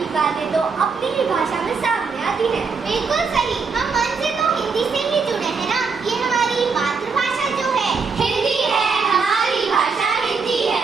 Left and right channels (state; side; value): quieter; left; 5.0 dB